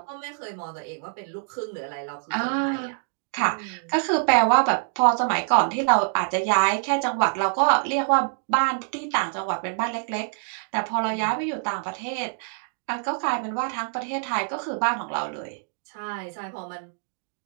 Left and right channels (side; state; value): left; silent; 61 dB below the other